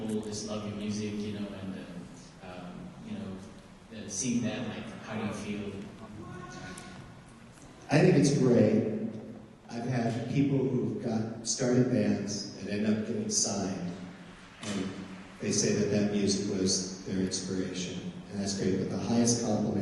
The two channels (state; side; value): identical; both; correlation 1.00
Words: just love your music, you know, and seeing that, like, how do you feel? I think it's great. I've had people who've started bands and end up getting signed, and they say that music was their inspiration, and that's great. But the highest